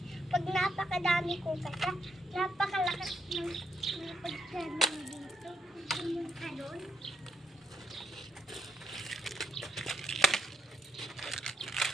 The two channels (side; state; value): both; normal; correlation 0.79